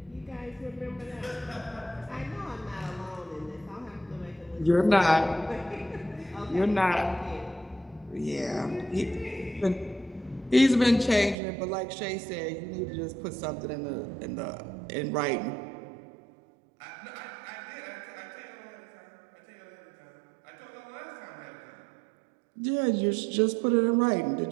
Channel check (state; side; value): drops out; left; at 11.4 s